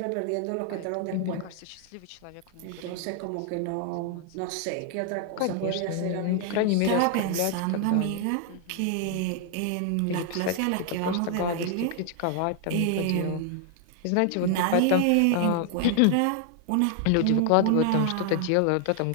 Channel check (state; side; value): different; both; correlation 0.00